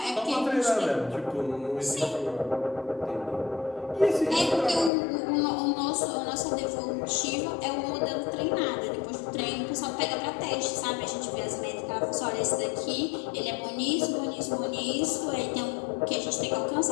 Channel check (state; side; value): drops out; right; at 4.9 s